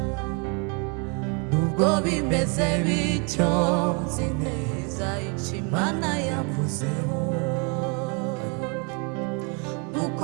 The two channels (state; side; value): quieter; left; 35.0 dB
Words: Nubwo bimeze bityo, nzi neza icyo Imana yavuzeho, nuko